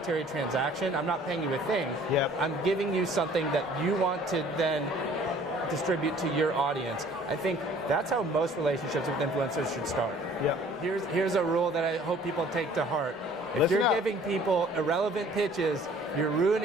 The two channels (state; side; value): normal; both; correlation 0.54